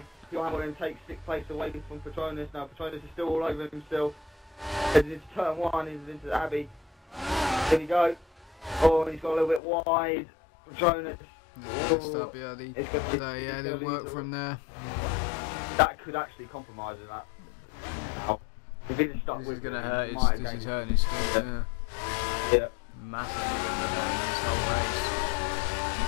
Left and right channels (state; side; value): drops out; right; at 9.6 s